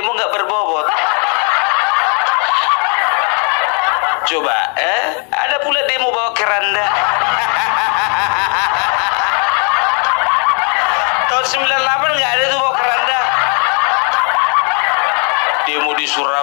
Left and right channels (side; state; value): right; quieter; 39.1 dB